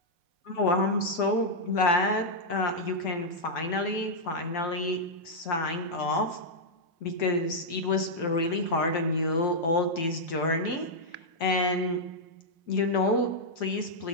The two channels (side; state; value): right; late; 6.0 ms